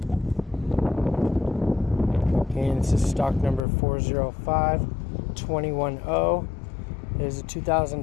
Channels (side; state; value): right; drops out; at 3.6 s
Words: Again, this is stock number 405210. It is a